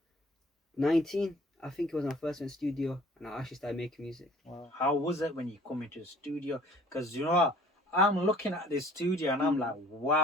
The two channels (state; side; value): normal; both; correlation 0.52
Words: I think it was when I first went studio and I actually started making music. Wow. How was it when you come into the studio? Because you know what? I'm looking at this studio and I'm like,